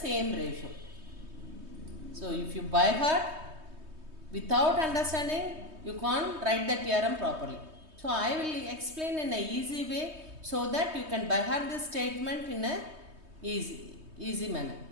ratio. So if you by heart, without understanding, you can't write the theorem properly. So I will explain in a easy way, so that you can by heart this statement in a easy manner.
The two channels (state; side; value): late; left; 3.2 ms